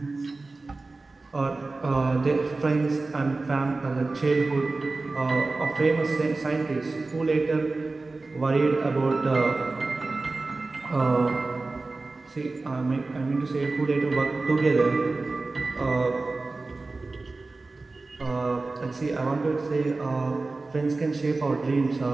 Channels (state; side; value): quieter; left; 3.5 dB